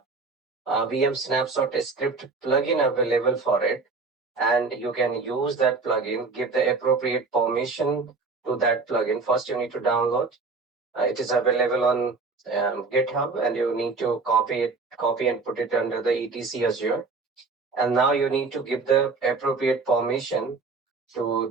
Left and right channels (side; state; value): left; quieter; 4.2 dB